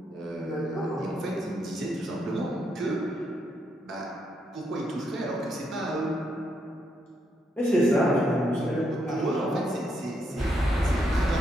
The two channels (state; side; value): normal; both; correlation 0.78